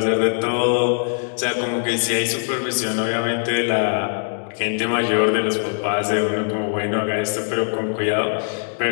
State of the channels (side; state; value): right; silent; digital silence